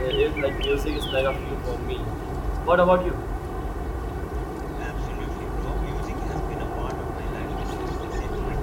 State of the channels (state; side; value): identical; both; correlation 1.00